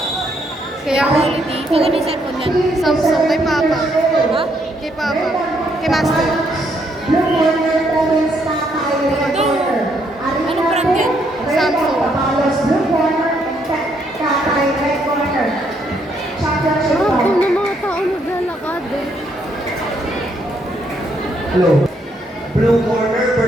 Kaya quality. Kung ano yung cellphone yan? Samsung kay Papa. Ha? Kay Papa. Kay Master. Blue Corner Province Tatay Recorder. Ano brand yan? Samsung. Papalos Blue Corner Tatay Recorder. Championship Ah, bout. kung ng mga tao naglalakad. Hello. Blue corner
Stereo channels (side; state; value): both; normal; correlation 0.73